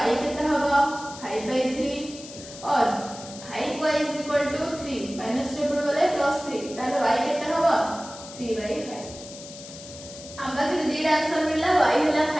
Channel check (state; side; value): noise; left; hiss, 15 dB below the sound